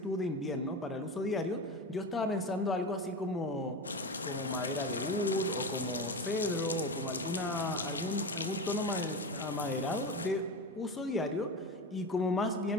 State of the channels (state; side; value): normal; both; correlation 0.24